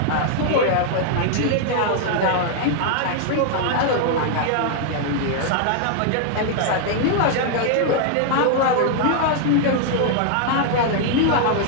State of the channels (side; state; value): both; different; correlation 0.00